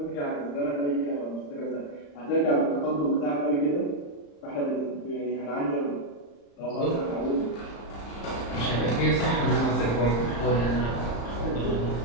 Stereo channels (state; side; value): late; right; 35 ms